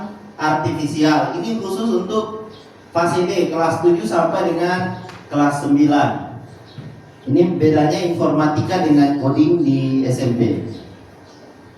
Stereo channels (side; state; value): both; identical; correlation 1.00